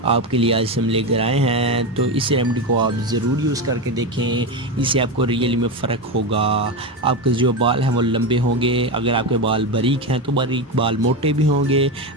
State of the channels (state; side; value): normal; both; correlation 0.15